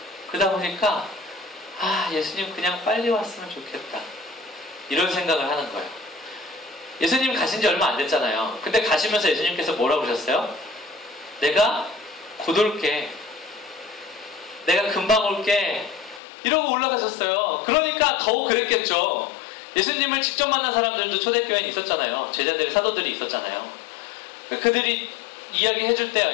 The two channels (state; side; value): drops out; right; at 16.2 s